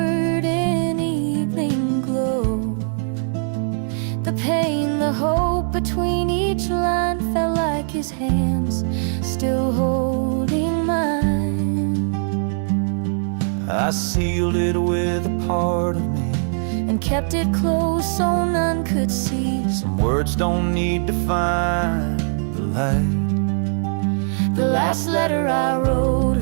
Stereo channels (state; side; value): silent; left; 65 dB below the other